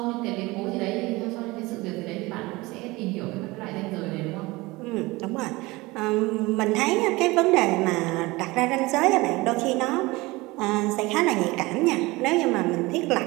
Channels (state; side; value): quieter; left; 21.9 dB